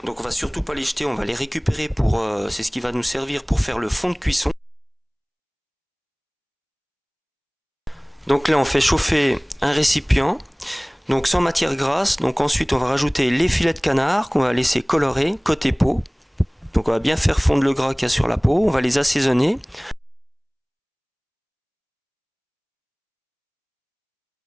donc on va surtout pas les jeter, on va les récupérer pour, c'est ce qui va nous servir pour faire le fond de cuisson. Donc là on fait chauffer un récipient, donc sans matière grasse. Donc ensuite on va rajouter les filets de canard qu'on va laisser colorer côté peau. Donc on va bien faire fondre le gras qu'il y a sur la peau, on va les assaisonner.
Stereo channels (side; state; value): both; identical; correlation 1.00